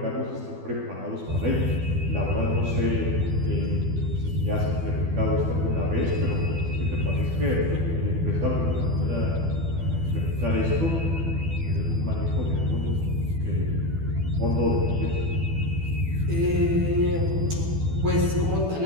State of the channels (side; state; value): left; late; 12 ms